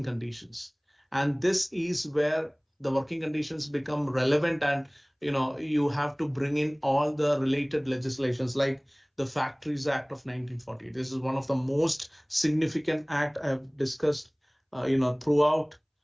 conditions. And this is where the working conditions become relevant, and you have to bring in all the related legislations like the Factories Act of 1940. This is one of the most significant act I have discussed throughout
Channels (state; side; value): identical; both; correlation 1.00